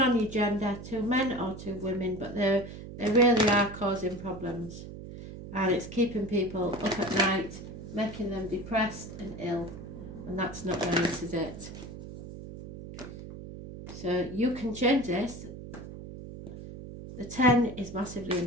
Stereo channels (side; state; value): right; noise; hum, 12 dB below the sound